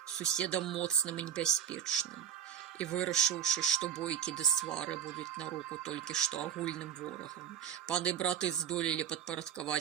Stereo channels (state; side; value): quieter; left; 8.9 dB